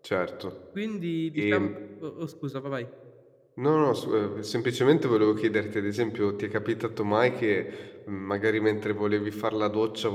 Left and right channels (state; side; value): identical; both; correlation 1.00